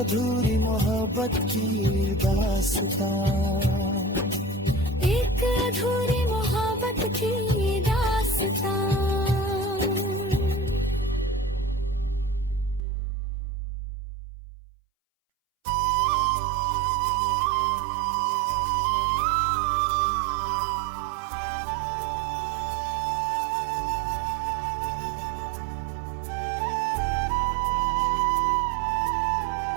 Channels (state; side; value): drops out; left; at 12.8 s